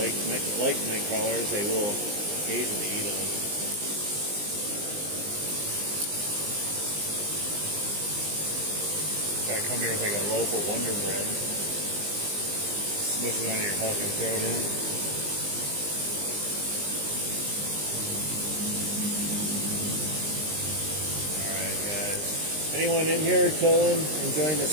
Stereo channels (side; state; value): left; late; 20 ms